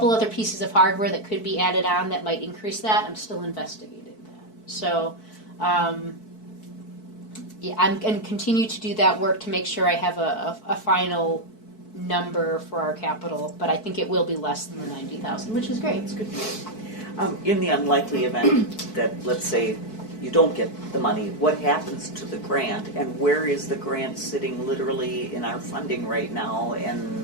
other pieces of hardware that could be added on that might increase that. I'm still investigating that. So, yeah, I'm going to continue to do that work to make sure I have a final number for our capital, but I think it will be less than the 90,000, which is great. That's good news. In the unlikely event that, let's say, you don't get the money, what happens to the grant, and where is the grant sitting literally in our funding right now,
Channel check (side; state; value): right; late; 4.6 ms